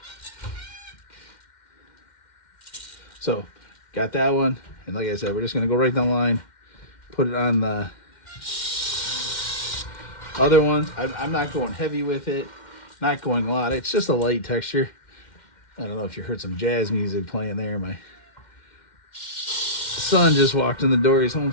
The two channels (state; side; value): late; right; 2.1 ms